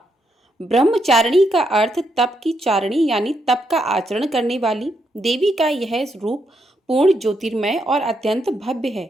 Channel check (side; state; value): both; normal; correlation 0.79